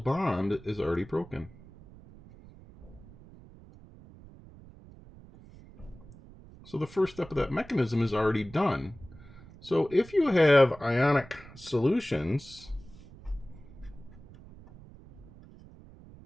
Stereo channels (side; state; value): right; noise; rumble, 20 dB below the sound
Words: bond is already broken. So the first step of that mechanism is already done. So if you have ionic solutions,